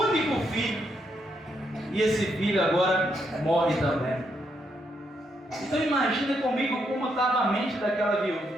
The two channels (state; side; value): normal; both; correlation 0.78